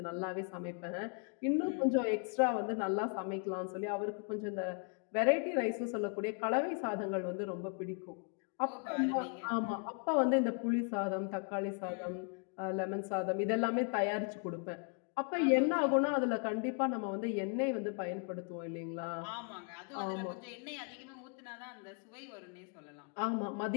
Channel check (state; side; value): quieter; right; 39.1 dB